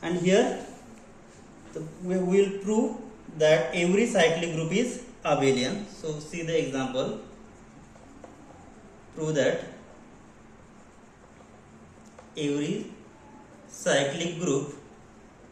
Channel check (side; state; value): both; identical; correlation 1.00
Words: And here we will prove that every cyclic group is abelian. So see the example. Prove that every cyclic group